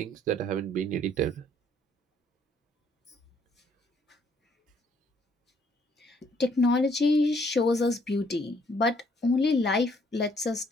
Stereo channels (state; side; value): normal; both; correlation 0.66